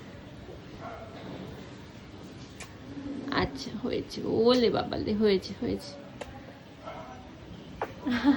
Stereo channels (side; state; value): both; identical; correlation 1.00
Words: আচ্ছা হয়েছে, ওলে বাবালে, হয়েছে হয়েছে।